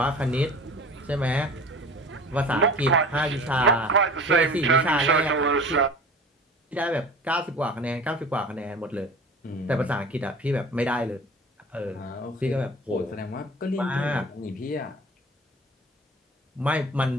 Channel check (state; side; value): normal; both; correlation 0.40